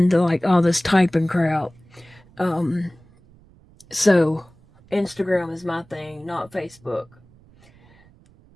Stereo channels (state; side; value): noise; right; rumble, 28 dB below the sound